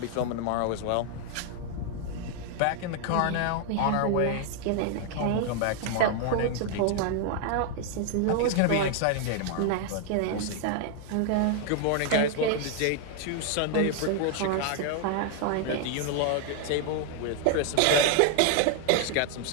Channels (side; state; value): both; different; correlation 0.00